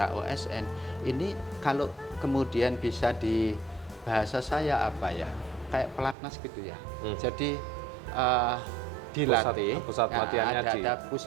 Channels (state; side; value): drops out; left; at 6.2 s